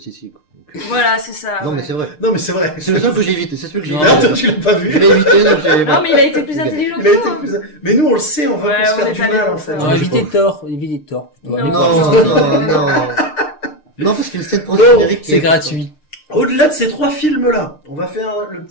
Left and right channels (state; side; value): late; right; 6.6 ms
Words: League. Donc, Voilà, c'est ça. non, ouais. mais c'est vrai. Non, mais c'est vrai. C'est le seul que j'ai évité, c'est celui que j'ai Non. évité. Ah, toi, tu l'as pas vu. Je l'ai évité, donc j'ai... Non, mais il a été plus Il a- intelligent Il que a toi, été hein. plus. Mais nous, on le sait, on va Ouais, pas se on faire est du allé mal, pour en ça. fait. Non, Ouais, évitez je Thor, évitez Thor. plutôt. Non. Allez Non, voir. non, non. Non, parce qu'une scène post-générique. C'est gratuit. Au-delà de ces 3 films-là, on va faire le